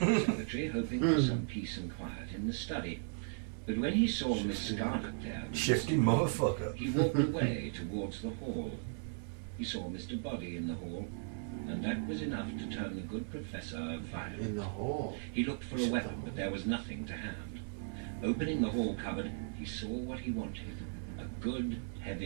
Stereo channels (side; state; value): left; silent; 53 dB below the other